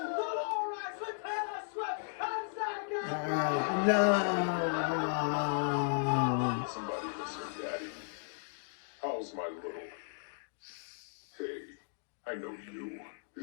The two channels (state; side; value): silent; right; digital silence